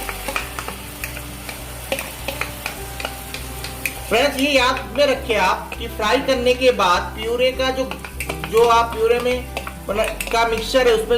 फ्रेंड्स ये याद में रखिए आप कि फ्राई करने के बाद प्यूरे का जो आप प्यूरे में का मिक्सचर है उसमें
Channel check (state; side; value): identical; both; correlation 1.00